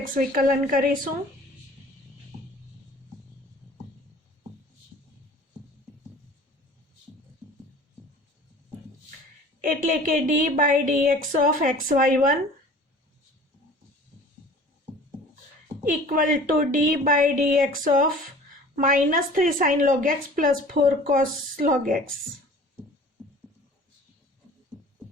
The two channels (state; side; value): normal; both; correlation 0.45